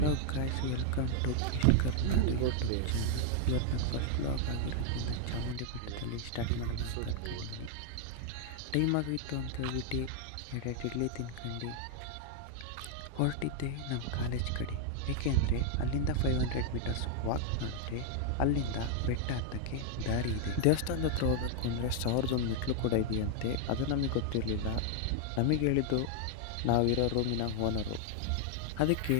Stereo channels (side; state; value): both; different; correlation 0.00